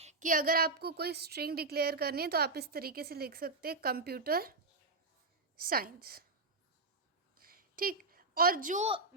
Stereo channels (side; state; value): left; quieter; 3.4 dB